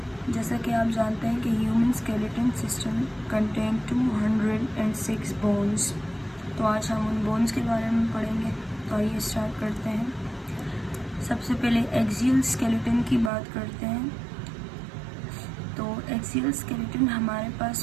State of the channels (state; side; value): drops out; left; at 13.3 s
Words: जैसा कि आप जानते हैं कि human skeleton system contain 206 bones. तो आज हम उन बोन्स के बारे में पढ़ेंगे। तो आइए स्टार्ट करते हैं। सबसे पहले एक्सियल स्केलेटन की बात करते हैं। तो एक्सियल स्केलेटन हमारे